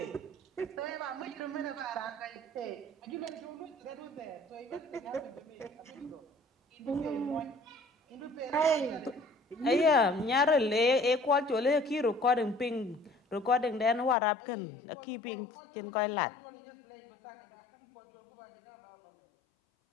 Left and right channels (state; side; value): drops out; right; at 14.2 s